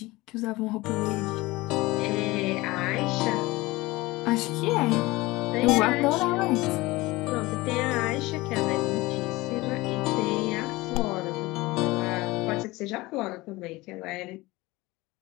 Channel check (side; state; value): right; quieter; 20.8 dB